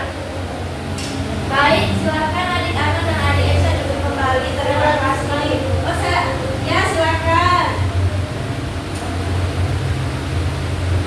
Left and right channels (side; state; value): both; identical; correlation 1.00